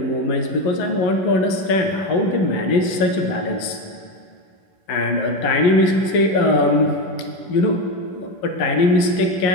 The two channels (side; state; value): right; late; 11 ms